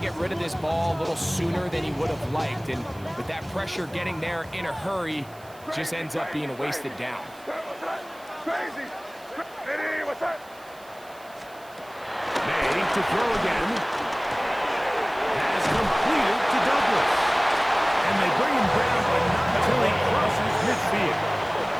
rid of this ball a little sooner than he would have liked. And with that pressure getting there in a hurry, just ends up being a wasted down. May to throw again. Has completed to Douglas. And they bring him down, but not until he crosses midfield.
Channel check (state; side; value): noise; right; hiss, 25 dB below the sound